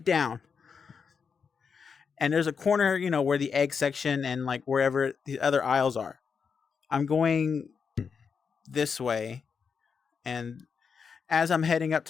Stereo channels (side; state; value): right; quieter; 6.0 dB